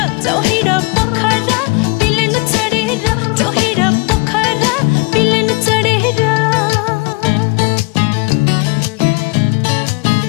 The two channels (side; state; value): right; quieter; 28.4 dB